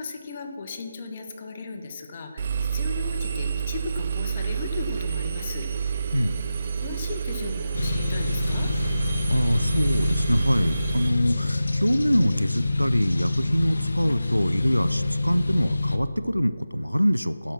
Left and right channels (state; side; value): inverted; both; correlation -0.92